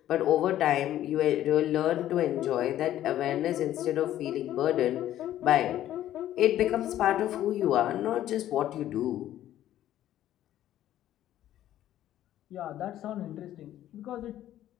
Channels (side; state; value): right; quieter; 12.6 dB